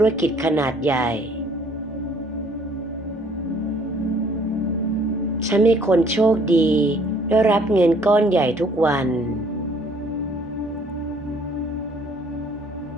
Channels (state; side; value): normal; both; correlation 0.60